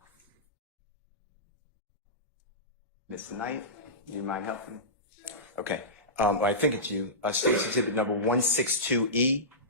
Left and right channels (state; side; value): normal; both; correlation -0.19